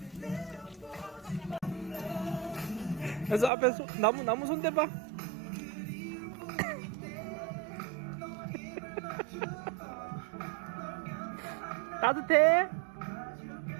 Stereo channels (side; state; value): left; drops out; at 3.5 s